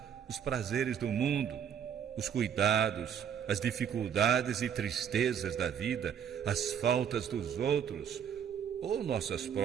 os prazeres do mundo, os cuidados, as dificuldades e tristezas da vida, as faltas dos outros ou nossas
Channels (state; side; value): quieter; left; 8.4 dB